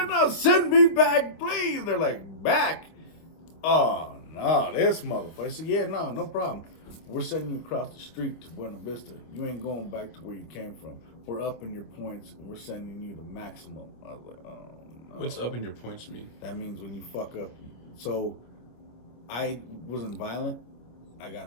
now? Send me back, please. They're like, back? Oh, no, this motherfucker. I said, yeah, no problem. We're sending you across the street to Buena Vista. You ain't going back to where you came from. We're upping your points, and we're sending you the maximum. I was like, oh, no. What's upping your points mean? That means when you fuck up. So, I wasn't violent. I got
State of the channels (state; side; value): late; right; 26 ms